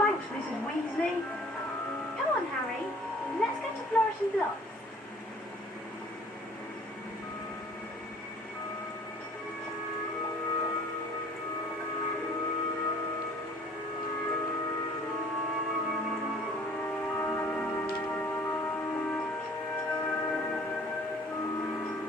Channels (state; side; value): normal; both; correlation 0.53